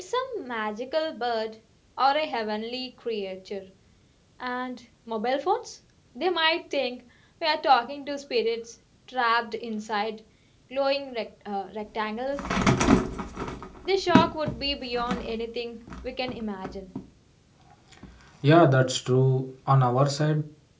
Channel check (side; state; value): both; identical; correlation 1.00